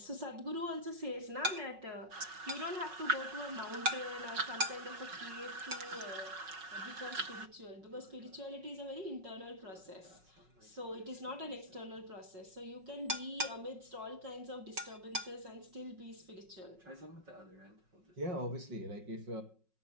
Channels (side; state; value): left; late; 5.4 ms